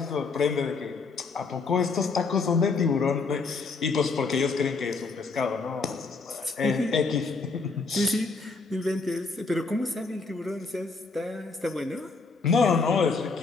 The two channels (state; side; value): quieter; right; 4.2 dB